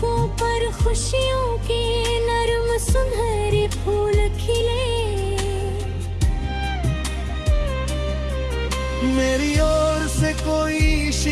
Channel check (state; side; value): identical; both; correlation 1.00